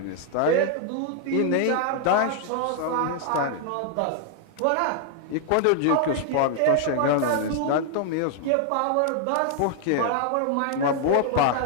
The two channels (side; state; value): both; different; correlation 0.00